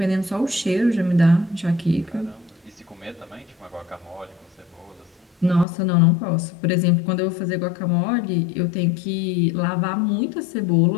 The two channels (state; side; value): drops out; right; at 5.7 s